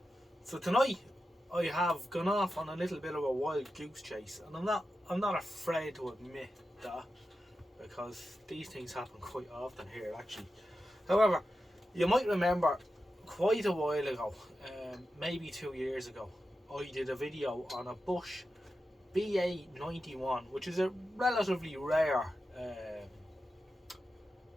So tonight I have gone off on a little bit of a wild goose chase, and I'm not afraid to admit that, because these things happen quite often here actually. However, you might remember quite a while ago, maybe 2 years ago, I did a video on a Bosch BA91, which is a relatively rare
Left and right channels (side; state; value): both; normal; correlation 0.91